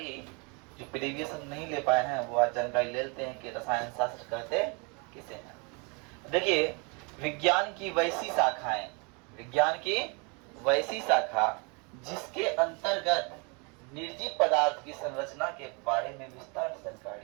जो प्रीवियस हम नहीं ले पाए हैं वो आज जानकारी ले लेते हैं कि रसायन शास्त्र कहते किसे हैं। देखिए विज्ञान की वैसी शाखाएं, विज्ञान की वैसी शाखा जिसके अंतर्गत निर्जीव पदार्थ की संरचना के बारे में विस्तार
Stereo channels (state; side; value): quieter; left; 32.4 dB